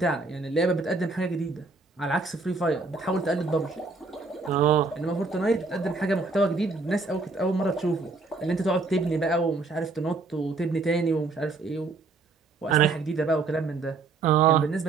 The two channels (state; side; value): quieter; left; 3.9 dB